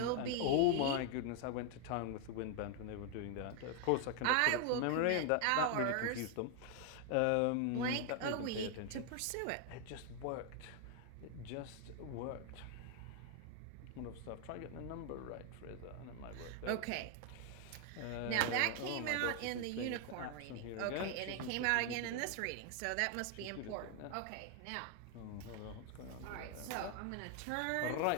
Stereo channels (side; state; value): both; different; correlation 0.00